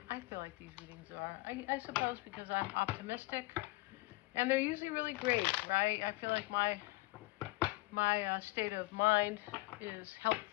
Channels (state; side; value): quieter; right; 22.0 dB